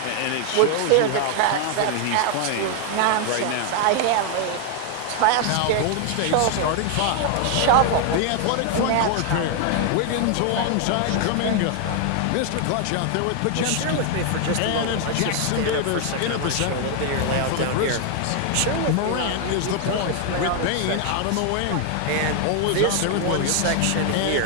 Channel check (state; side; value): different; both; correlation 0.00